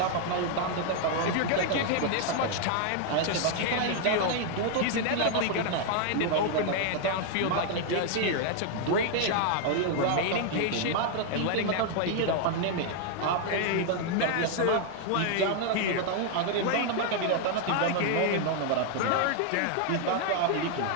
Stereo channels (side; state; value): both; different; correlation 0.00